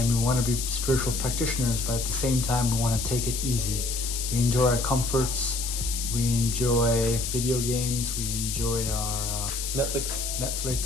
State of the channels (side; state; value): left; noise; hiss, 4 dB below the sound